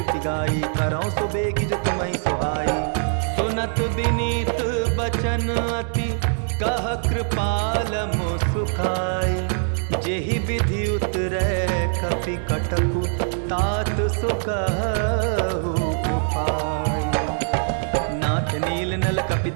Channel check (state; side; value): silent; left; digital silence